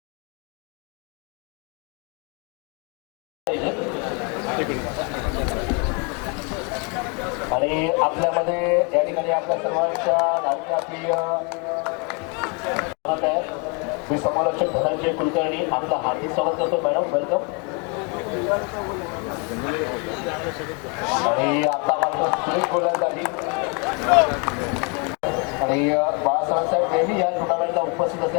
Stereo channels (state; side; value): quieter; right; 34.0 dB